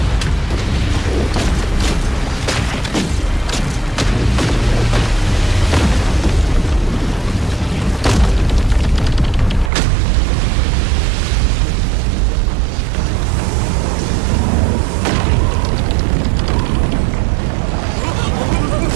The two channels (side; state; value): left; drops out; at 9.7 s